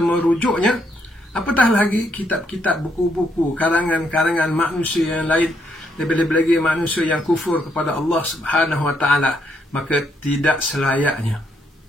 apatah lagi kitab-kitab, buku-buku, karangan-karangan manusia yang lain, lebih-lebih lagi manusia yang kufur kepada Allah Subhanahu wa taala. Maka tidak selayaknya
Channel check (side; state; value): both; normal; correlation 0.75